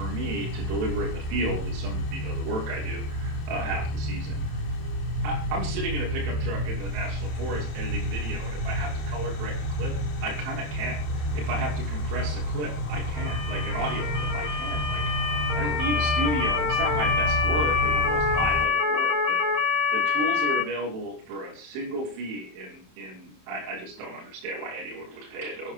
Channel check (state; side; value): late; left; 27 ms